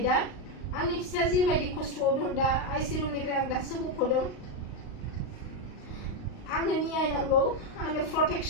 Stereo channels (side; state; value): right; late; 38 ms